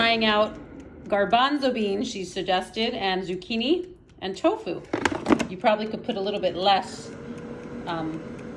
out garbanzo beans, she suggested, and zucchini and tofu. You probably could put a little bit less and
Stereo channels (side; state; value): both; identical; correlation 1.00